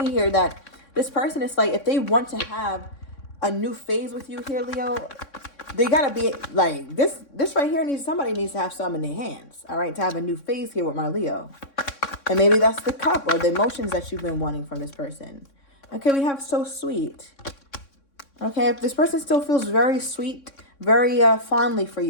here that this person is like, if they want to have a new phase with you here, Leo, they gotta be like this right here. Somebody needs to have some in their hands, all right, to have a new phase here with my Leo. And maybe that's the cup or the emotions that you've been wanting from this person. Okay, we have so sweet. Okay, if this person still feels very sweet, very fondly for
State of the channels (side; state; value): right; late; 3.6 ms